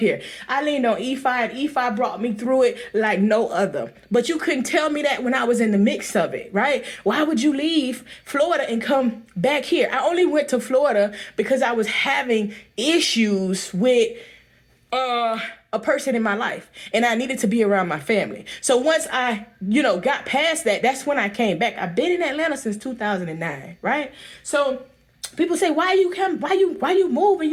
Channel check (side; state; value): both; identical; correlation 1.00